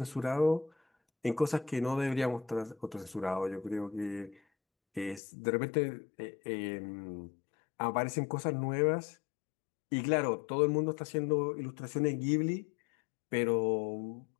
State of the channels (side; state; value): right; drops out; at 5.2 s